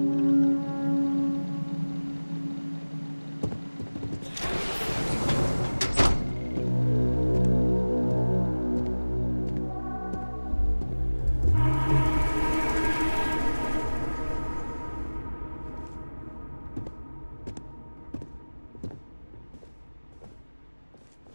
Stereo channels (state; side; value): inverted; both; correlation -1.00